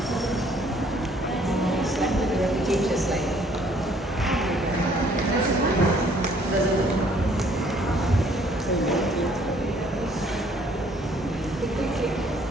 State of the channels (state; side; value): normal; both; correlation 0.61